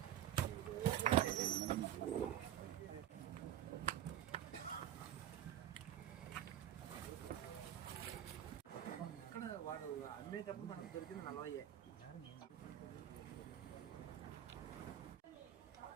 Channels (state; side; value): quieter; left; 11.4 dB